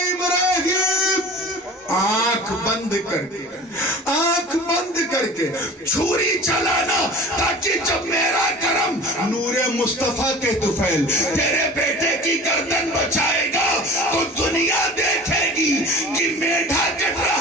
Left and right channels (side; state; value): both; normal; correlation 0.39